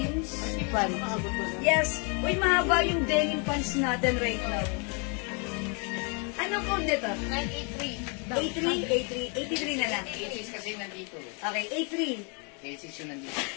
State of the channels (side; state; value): right; quieter; 35.8 dB